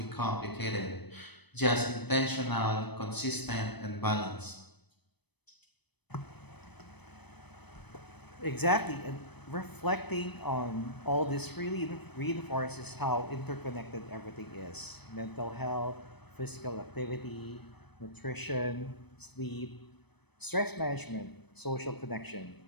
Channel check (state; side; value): late; right; 0.98 ms